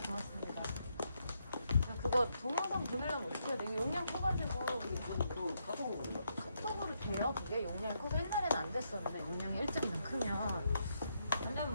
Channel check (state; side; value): inverted; both; correlation -0.79